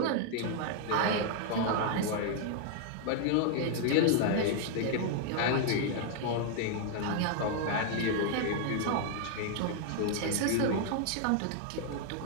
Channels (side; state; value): both; different; correlation 0.00